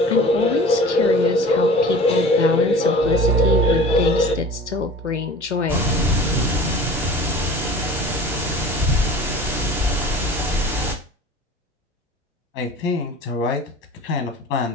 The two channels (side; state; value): both; normal; correlation 0.41